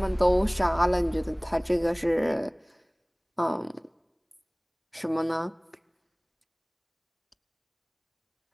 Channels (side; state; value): both; identical; correlation 1.00